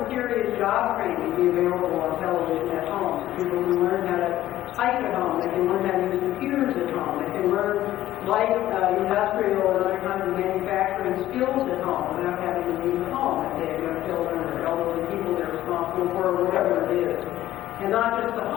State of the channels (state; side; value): quieter; right; 13.9 dB